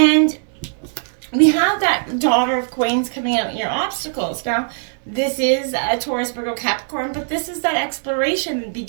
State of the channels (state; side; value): silent; left; digital silence